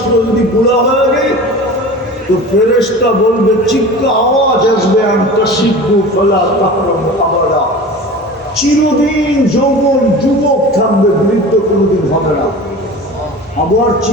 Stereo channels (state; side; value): normal; both; correlation 0.36